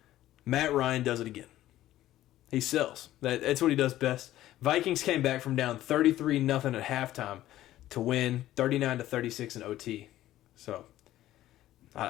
Matt Ryan does it again. He sells. That's what he does best. Vikings came back from down 33-0 at halftime to win 39-36 in OT. So,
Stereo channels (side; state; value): right; quieter; 14.2 dB